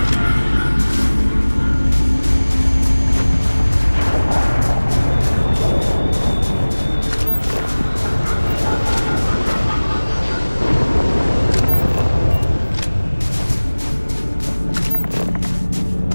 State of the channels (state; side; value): inverted; both; correlation -1.00